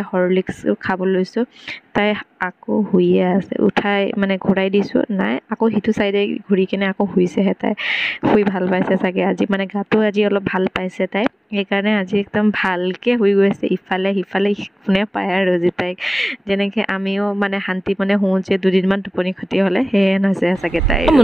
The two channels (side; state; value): both; normal; correlation 0.98